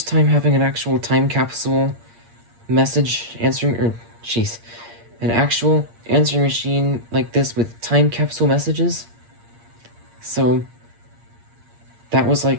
time having an actual time capsule message answering, or, jeez, an actual answering machine like this with time capsule messages. So, that was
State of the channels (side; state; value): left; late; 8.6 ms